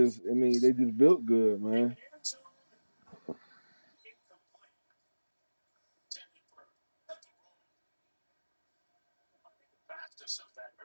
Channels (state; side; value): inverted; both; correlation -1.00